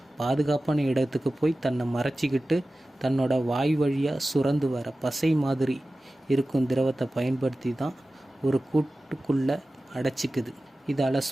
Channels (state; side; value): normal; both; correlation 0.96